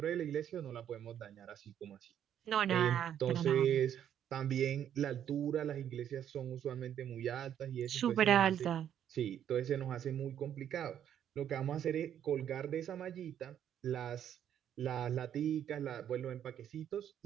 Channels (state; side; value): quieter; left; 9.8 dB